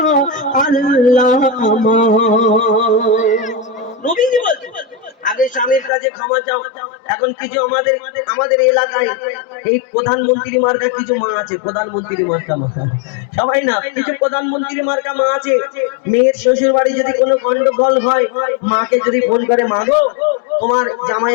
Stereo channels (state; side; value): drops out; right; at 5.9 s